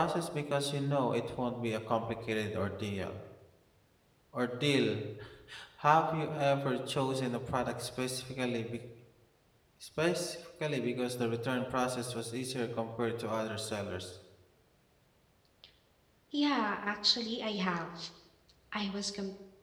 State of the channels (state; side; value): identical; both; correlation 1.00